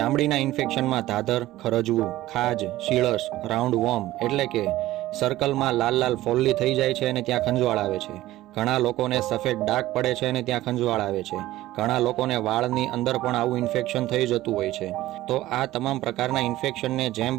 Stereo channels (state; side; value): quieter; left; 15.9 dB